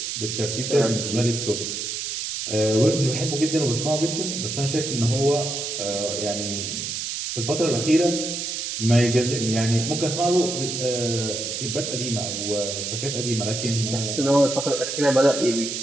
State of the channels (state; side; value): noise; right; hiss, 4 dB below the sound